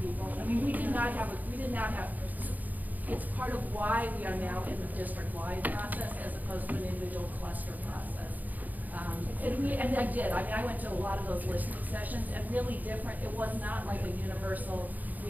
I mean, we did not have. It's part of why we are now in the district-wide process as opposed to an individual cluster process. And I did. I mean, I went to a lot of those listening sessions, and really different. It was not like a universal.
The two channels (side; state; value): left; late; 0.082 ms